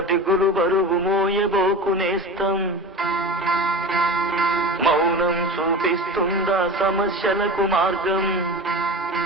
దిగులు బరువు మోయబోకునేస్తాం, మౌనం చూపిస్తుందా సమస్యలకు మార్గం.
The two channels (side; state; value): both; normal; correlation 0.31